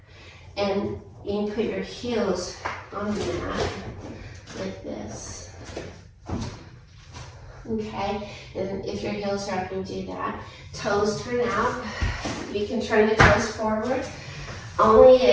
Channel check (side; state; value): both; identical; correlation 1.00